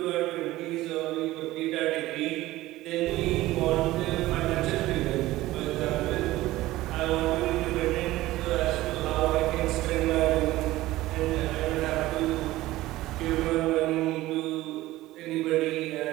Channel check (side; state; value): left; quieter; 17.0 dB